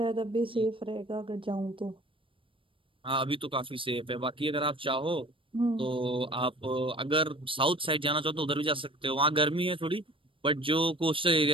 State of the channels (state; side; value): late; left; 0.25 ms